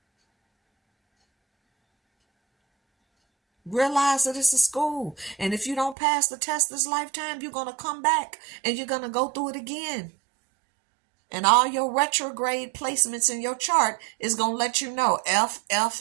Realize that it's a school. And if you don't pass the test this lifetime, you're going to come back and you're going to go through it again. And all your retrograde placements in your chart is going to let you know F,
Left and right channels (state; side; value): drops out; left; at 6.0 s